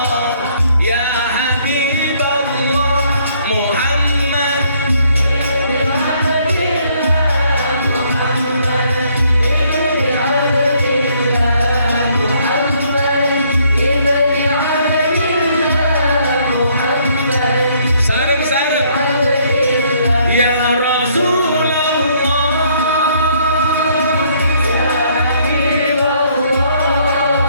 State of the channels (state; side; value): inverted; both; correlation -0.66